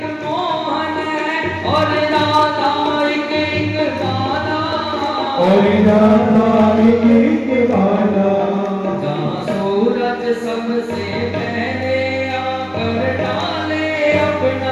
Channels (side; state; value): both; identical; correlation 1.00